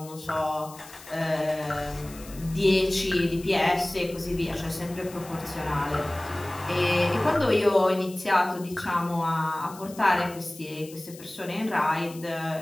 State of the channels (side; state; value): left; noise; hiss, 18 dB below the sound